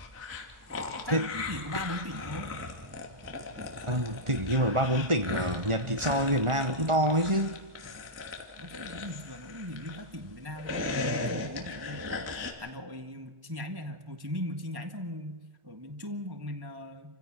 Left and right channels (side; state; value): left; late; 1.4 ms